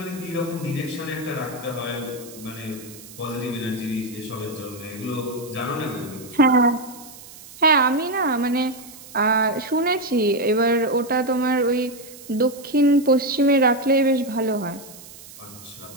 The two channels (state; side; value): noise; right; hiss, 18 dB below the sound